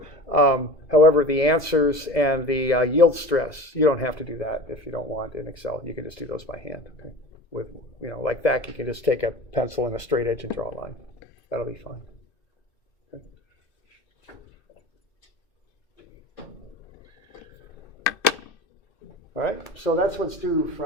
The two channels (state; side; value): late; right; 2.0 ms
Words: However, the answers and the yield stress, you don't have to do that if you don't want in Excel. You can just do those by hand. Okay? With, like that, you can just take a pencil and a straight edge and draw a line. That'll be fine. Okay. All right, so that's what's due